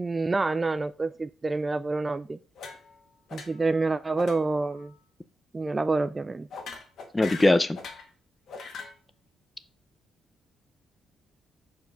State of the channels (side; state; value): both; normal; correlation 0.94